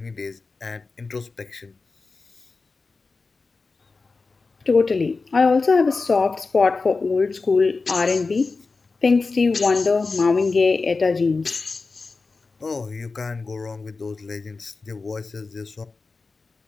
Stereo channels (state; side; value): quieter; right; 4.1 dB